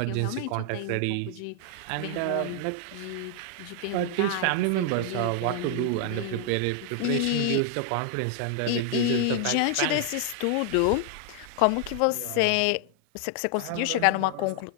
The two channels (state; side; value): different; both; correlation 0.00